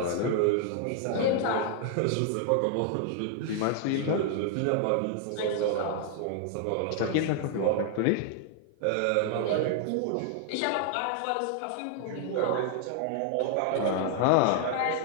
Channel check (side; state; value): both; different; correlation 0.00